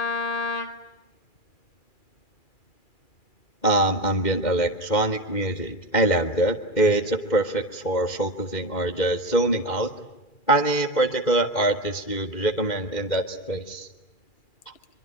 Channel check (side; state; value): right; late; 2.4 ms